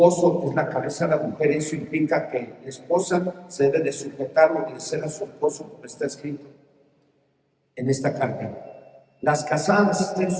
es la cabeza de la mujer. Eso implica que la esposa se debe de sujetar o obedecer a su esposo, como está escrito en esta carta. Las casadas estén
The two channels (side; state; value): both; identical; correlation 1.00